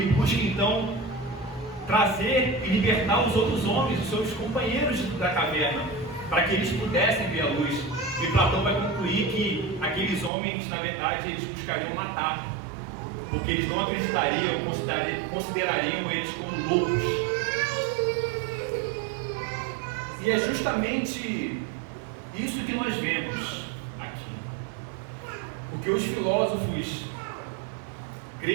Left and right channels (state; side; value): drops out; left; at 10.3 s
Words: busca então trazer e libertar os outros homens, os seus companheiros da caverna, para que eles pudessem ver a luz. E Platão vai concluir que aqueles homens, na verdade, eles buscariam matar, porque eles não acreditariam, considerariam eles como loucos. E é justamente isso que nós vemos aqui, porque os filósofos